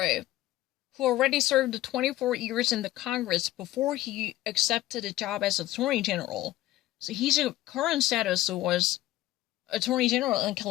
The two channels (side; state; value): right; quieter; 15.4 dB